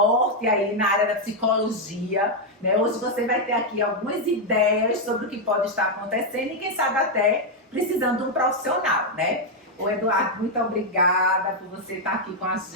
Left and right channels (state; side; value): normal; both; correlation 0.00